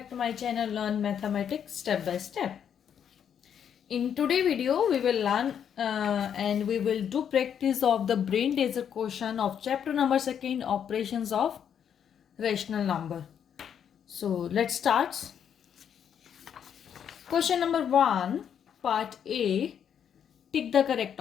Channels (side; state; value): right; quieter; 8.4 dB